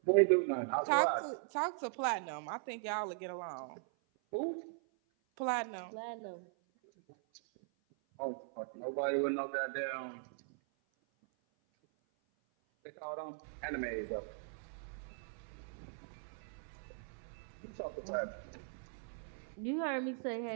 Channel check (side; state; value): left; silent; 51 dB below the other